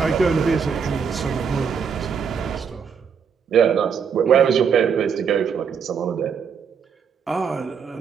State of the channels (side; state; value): left; quieter; 6.7 dB